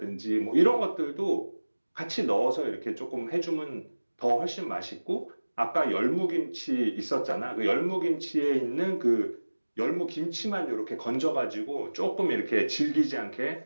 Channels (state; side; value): inverted; both; correlation -1.00